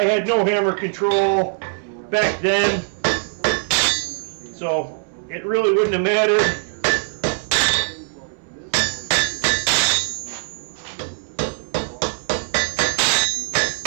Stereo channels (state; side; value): silent; left; 65 dB below the other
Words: had no hammer control back then, so it really wouldn't have mattered.